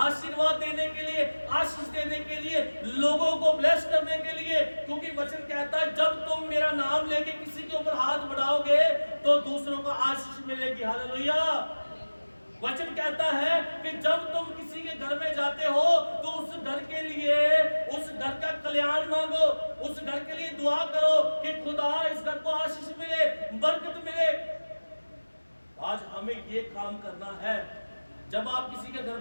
देने के लिए, आशीष देने के लिए, लोगों को ब्लेस करने के लिए। क्योंकि वचन कहता है जब तुम मेरा नाम लेके किसी के ऊपर हाथ बढ़ाओगे तो दूसरों को आशीष मिलेगी। हालेलुया। वचन कहता है कि जब तुम किसी के घर में जाते हो तो उस घर के लिए, उस घर का कल्याण मांगो, उस घर के लिए दुआ करो कि खुदा इस घर को आशीष मिले, बरकत मिले। आज हमें ये काम करना है। जब आप किसी के घर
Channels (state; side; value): inverted; both; correlation -1.00